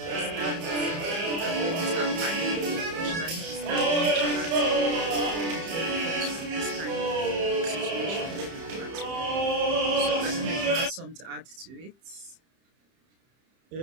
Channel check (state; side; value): late; left; 30 ms